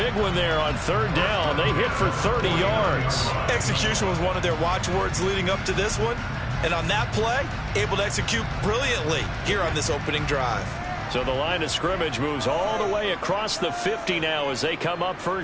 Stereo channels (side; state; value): both; identical; correlation 1.00